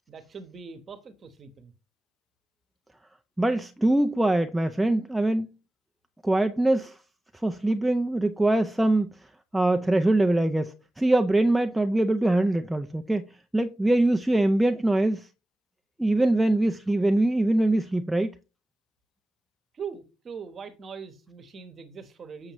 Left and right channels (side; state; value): both; normal; correlation 0.97